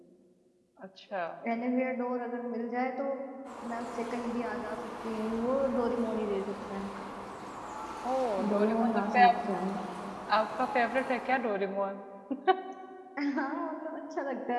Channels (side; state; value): both; identical; correlation 1.00